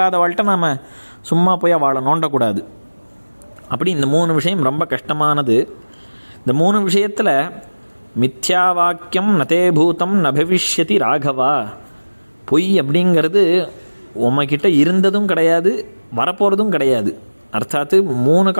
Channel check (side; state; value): both; inverted; correlation -1.00